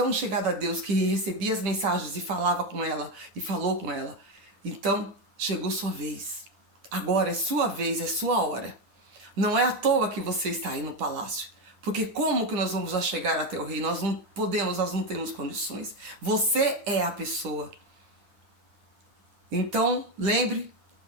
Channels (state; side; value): late; left; 10 ms